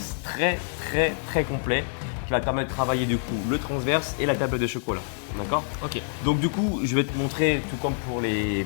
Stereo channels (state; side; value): silent; right; digital silence